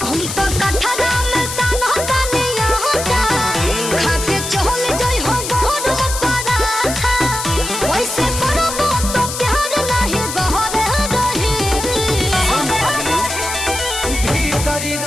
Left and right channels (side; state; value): left; noise; hiss, 6 dB below the sound